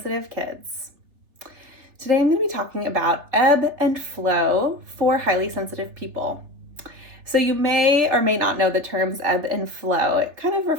kids. Today I'm going to be talking about ebb and flow for highly sensitive people. So you may or may not know the terms ebb and flow. It kind of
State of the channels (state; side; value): late; left; 3.4 ms